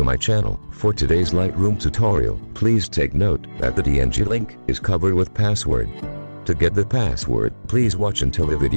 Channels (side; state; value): both; inverted; correlation -1.00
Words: my channel. For today's Lightroom tutorial, please take note that the DNG link is covered with password. To get the password, please watch until the